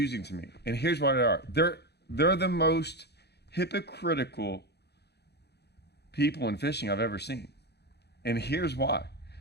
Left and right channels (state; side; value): late; right; 0.48 ms